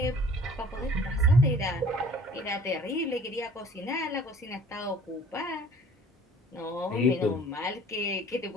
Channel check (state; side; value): normal; both; correlation 0.51